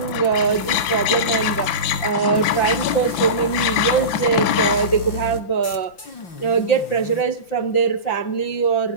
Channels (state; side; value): late; right; 5.7 ms